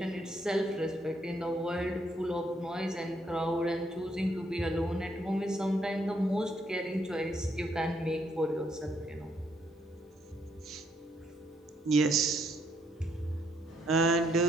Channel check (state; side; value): normal; both; correlation 0.73